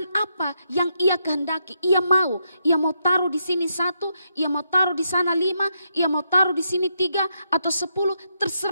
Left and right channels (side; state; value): both; inverted; correlation -0.80